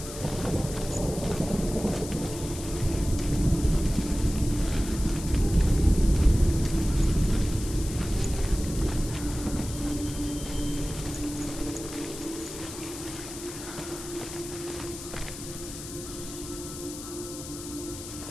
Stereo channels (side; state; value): left; noise; hiss, 11 dB below the sound